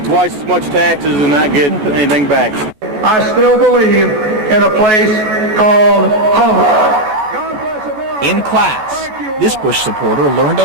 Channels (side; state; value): left; late; 14 ms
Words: twice as much taxes and not get anything back. I still believe in a place called home. In class, this Bush supporter learned a